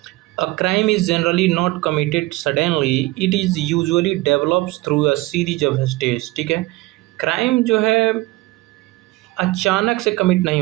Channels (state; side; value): quieter; left; 20.2 dB